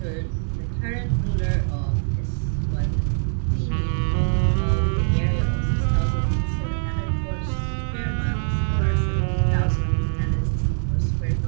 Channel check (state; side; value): silent; left; digital silence